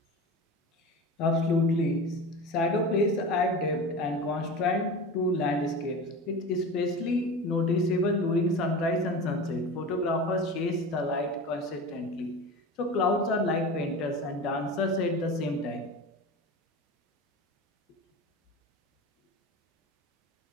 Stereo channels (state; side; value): normal; both; correlation 0.31